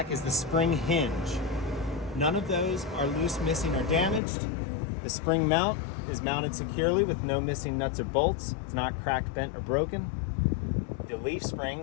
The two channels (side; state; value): right; drops out; at 4.2 s